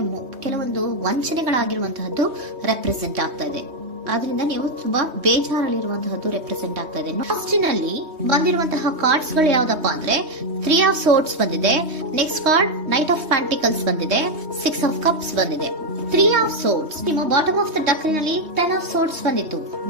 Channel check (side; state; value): left; late; 3.2 ms